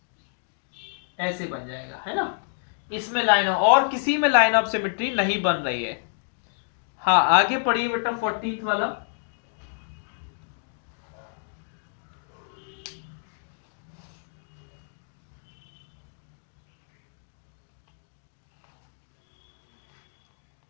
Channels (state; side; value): silent; right; digital silence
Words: ऐसे बन जाएगा, है ना? इसमें लाइन, और किसी में लाइन ऑफ सिमेट्री नहीं बन रही है। हाँ, आगे पढ़िए बेटा 14th वाला।